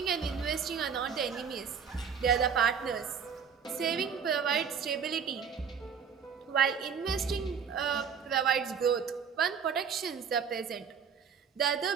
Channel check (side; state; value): left; quieter; 6.9 dB